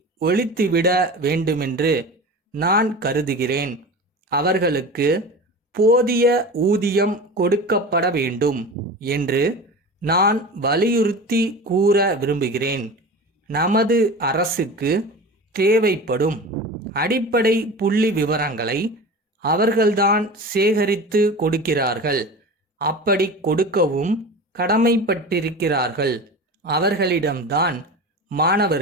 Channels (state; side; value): normal; both; correlation 0.32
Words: ஒழித்துவிட வேண்டுமென்று நான் கருதுகிறேன். அவர்களுக்கு போதிய ஊதியம் கொடுக்கப்பட வேண்டும் என்று நான் வலியுறுத்தி கூற விரும்புகிறேன். நமது அரசுக்கு தேவைப்படும் அடிப்படை புள்ளி விவரங்களை அவர்கள்தான் சேகரித்து கொடுக்கிறார்கள். அப்படி கொடுக்கவும் கடமைப்பட்டிருக்கிறார்கள். அவர்களிடம்தான்